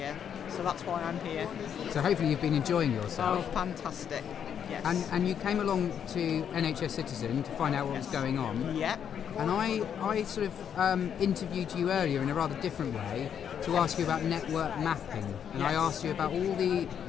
So that's why I'm here. So hopefully you've been enjoying yourself. Oh, fantastic. Yes. And you came along to NHSCitizen to find out what was going on. Yep. And I sort of interviewed you earlier in a rather different way to ask you about network mapping. And I asked you about all the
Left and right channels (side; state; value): right; quieter; 8.4 dB